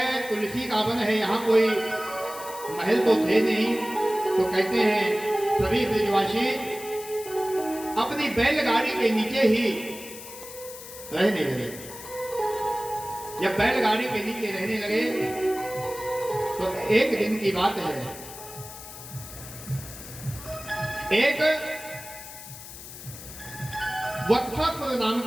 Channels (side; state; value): left; noise; hiss, 14 dB below the sound